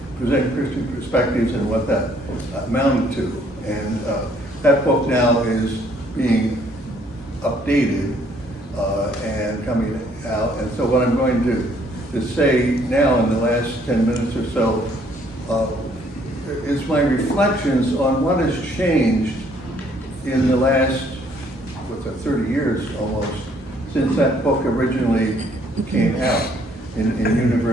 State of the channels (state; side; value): normal; both; correlation 0.64